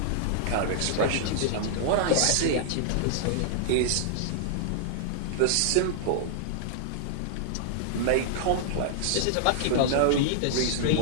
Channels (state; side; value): different; both; correlation -0.01